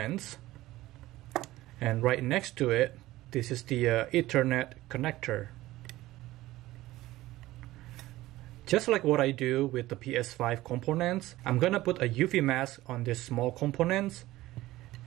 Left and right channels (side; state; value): left; quieter; 16.9 dB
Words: and right next to it, this is the Ethernet connector. Just like what I do with the PS5 components, I'm gonna put a UV mask on these small components.